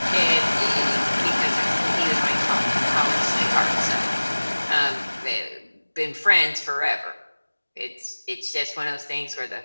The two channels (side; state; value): both; inverted; correlation -1.00